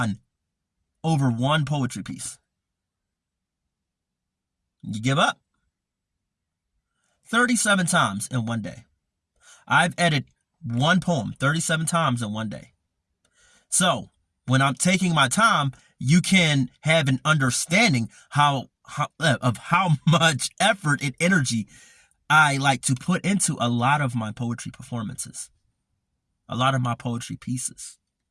over one poetry piece. You give up? 37 times in one day. I've edited one poem 37 times in one day. So when I'm taking my time, you can have an understanding of how much effort and energy I like to put into a lot of my poetry performances, a lot of my poetry pieces.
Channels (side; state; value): both; identical; correlation 1.00